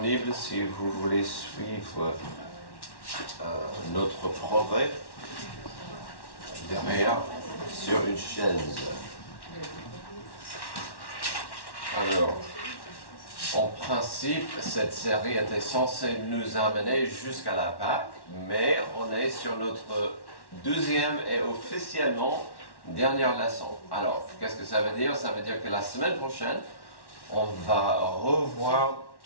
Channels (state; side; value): late; right; 1.1 ms